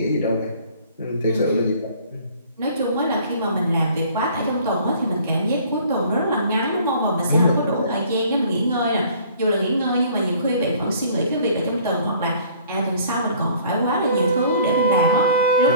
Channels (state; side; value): inverted; both; correlation -0.53